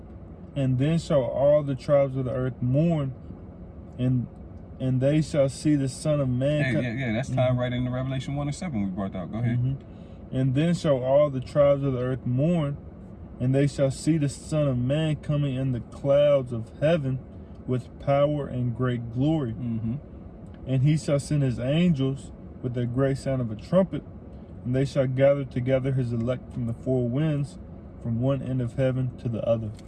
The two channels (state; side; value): identical; both; correlation 1.00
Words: and then shall all the tribes of the earth mourn, and they shall see the Son of Man. Yeah, that's tied right into Revelation 1:7 we brought out. Go ahead. And then shall all the tribes of the earth mourn, and they shall see the Son of Man coming in the clouds of heaven with power and great glory. And he shall send his angels with a great sound of a trumpet, and they shall gather together his elect from the four winds, from one end of heaven to the other.